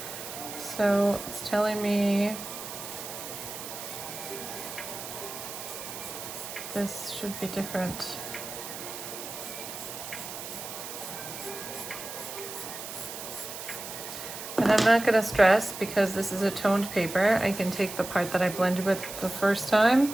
So it's telling me this should be different. And I'm not going to stress because this is a toned paper. I can take the part that I blended with the first time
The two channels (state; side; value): noise; right; hiss, 9 dB below the sound